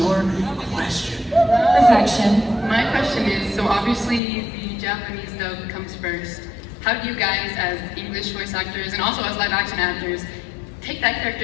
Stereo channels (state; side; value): drops out; right; at 4.2 s